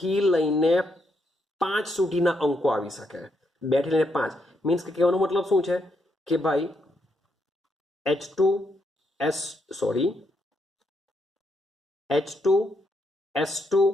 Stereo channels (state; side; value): normal; both; correlation 0.78